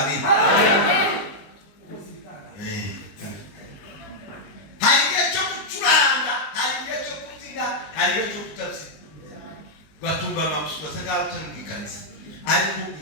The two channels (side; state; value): right; late; 20 ms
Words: hari igihe cyo gucuranga hari igihe cyo kubyina hari igihe cyo kutabyina gatumba amabuso basanga utangikanisa ariko